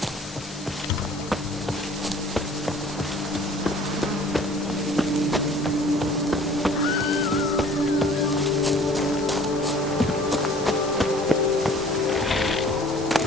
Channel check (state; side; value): normal; both; correlation 0.50